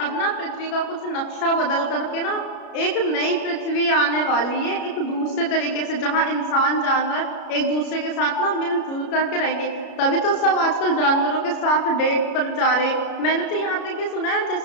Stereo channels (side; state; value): right; late; 33 ms